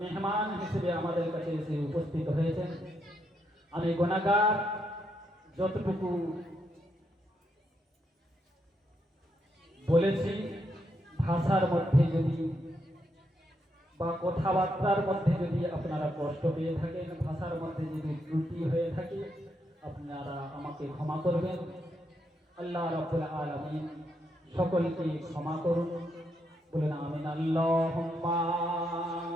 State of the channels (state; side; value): normal; both; correlation 0.79